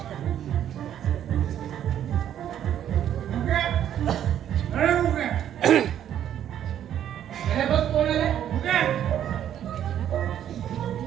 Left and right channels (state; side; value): quieter; left; 10.4 dB